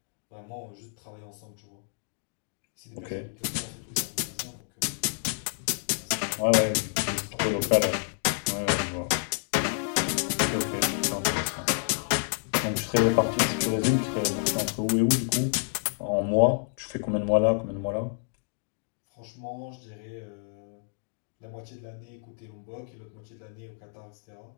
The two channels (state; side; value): silent; right; digital silence